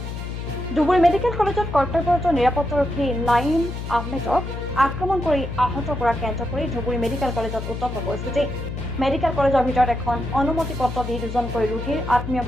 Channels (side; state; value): left; noise; hum, 7 dB below the sound